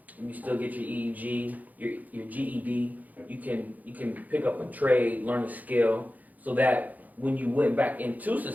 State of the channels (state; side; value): late; left; 0.080 ms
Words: you still get your EEG, your GED. You can pick up a trade, learn a skill, so that when you went back into